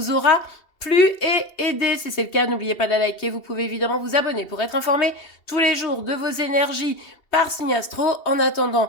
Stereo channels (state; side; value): late; right; 2.7 ms